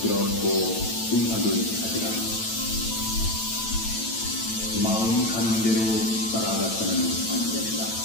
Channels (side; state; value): right; late; 9.0 ms